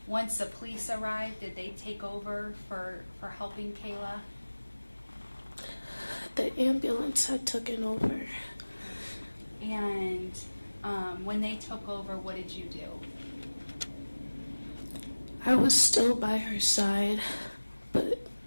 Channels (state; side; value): inverted; both; correlation -1.00